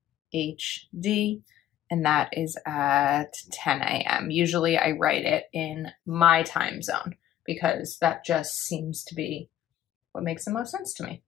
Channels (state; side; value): quieter; right; 11.7 dB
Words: and that is at 10 a.m. Usually I write it in my time zone because that just seems to be what makes the most sense to me.